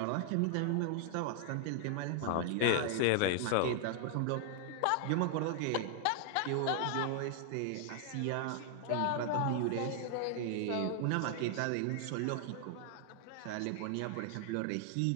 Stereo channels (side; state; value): both; different; correlation 0.00